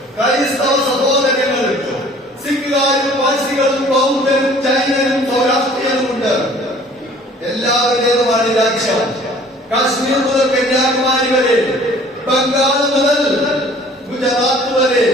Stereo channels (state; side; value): normal; both; correlation 0.52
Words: ക്രൈസ്തവ സഹോദരങ്ങളുണ്ട്, സിഖുകാരും പാഴ്സികളും ബൗദ്ധരും ജൈനരും സൗരാഷ്ട്രീയനുമുണ്ട്. എല്ലാവരുടേതുമാണ് രാജ്യം. കാശ്മീർ മുതൽ കന്യാകുമാരി വരെ, ബംഗാൾ മുതൽ ഗുജറാത്ത് വരെ